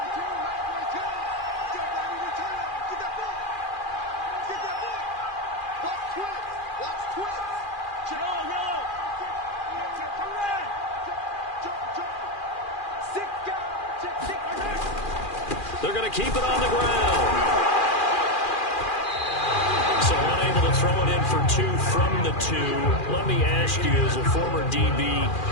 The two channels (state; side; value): late; right; 2.4 ms